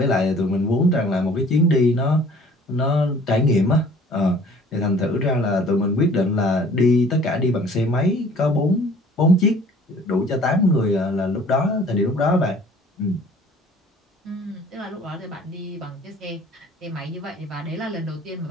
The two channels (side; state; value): both; normal; correlation 0.52